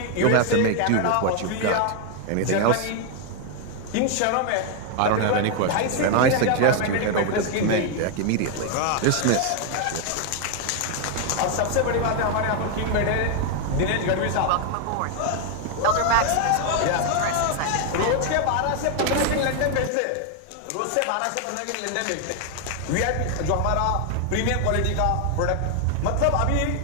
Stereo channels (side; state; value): both; different; correlation 0.01